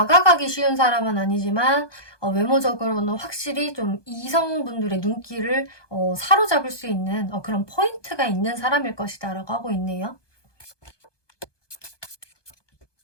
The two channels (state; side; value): late; right; 1.2 ms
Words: 쉬운 사람은 아니지만 외모적으로는 확실히 좀 이성분들의 눈길을 사로잡을 수 있는 그런 포인트가 있는 사람일 것이다 라고 하고 있네요.